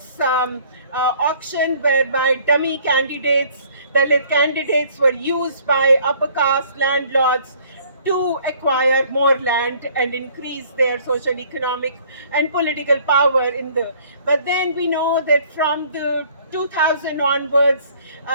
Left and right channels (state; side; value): inverted; both; correlation -0.57